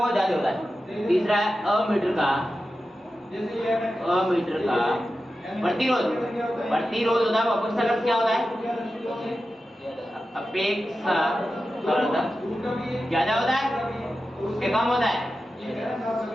ज्यादा होता है। तीसरा है अमीटर का प्रतिरोध होता है वो अपेक्षाकृत क्या होता है? अपेक्षाकृत ज्यादा होता है, उसके कम होता है।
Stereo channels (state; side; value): normal; both; correlation 0.92